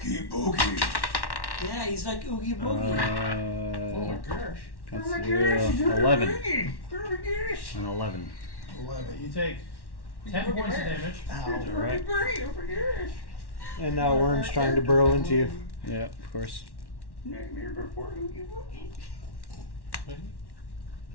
boogie. Yeah, he's like Oogie Boogie. Oh my gosh. That's 11. An 11. 11. You take 10 points of damage. Alright. And now worm's trying to burrow into you. Yeah, of course. Nightmare before Oogie Boogie.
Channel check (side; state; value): right; late; 1.1 ms